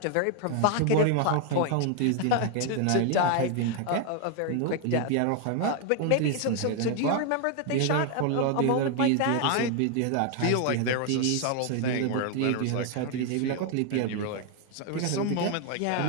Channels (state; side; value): different; both; correlation 0.01